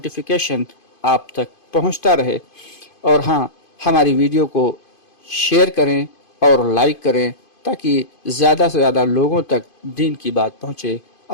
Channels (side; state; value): right; late; 2.5 ms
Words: آپ تک پہنچتا رہے، اور ہاں، ہماری ویڈیو کو شیئر کریں اور لائک کریں تاکہ زیادہ سے زیادہ لوگوں تک دین کی بات پہنچے۔